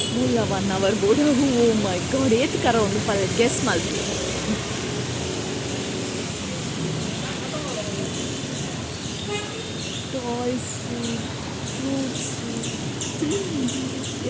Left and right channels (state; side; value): identical; both; correlation 1.00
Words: ಮೂಲ 1 ಅವರ್ ಬೋಡ ಓ ಮೈ ಗಾಡ್ ಏತ್ ಕರ ಒಂದು ಪಲ್ ಗೆಸ್ ಮಾಡ್ತೀವಿ ಟಾಯ್ಸ್ ಫ್ರೂಟ್ಸ್